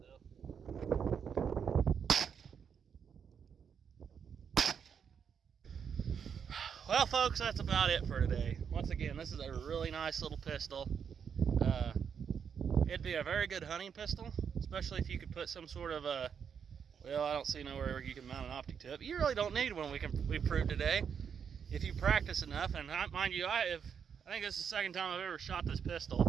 though. Well, folks, that's about it for today. Once again, this is a really nice little pistol. It'd be a very good hunting pistol, especially if you could put some sort of a, well, I don't see nowhere you can mount an optic to it, but you really don't need one. We proved today. If you practice enough, and mind you, I think this is the second time I've ever shot this pistol.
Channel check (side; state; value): left; quieter; 7.2 dB